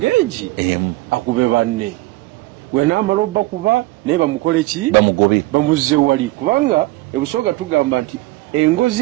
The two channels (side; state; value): left; quieter; 19.7 dB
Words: egi akube banne wenamala bakuba naye bamukole ki bamugobe bamuzze wali kubanga ebusooga tugamba nti